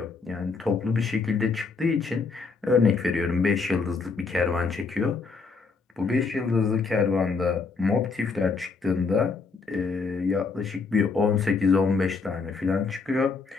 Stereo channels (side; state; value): right; quieter; 4.6 dB